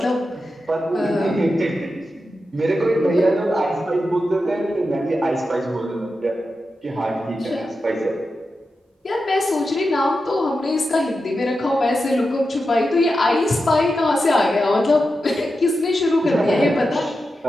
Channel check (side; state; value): both; normal; correlation 0.90